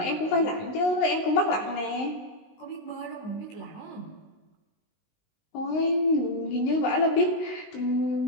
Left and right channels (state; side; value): late; right; 19 ms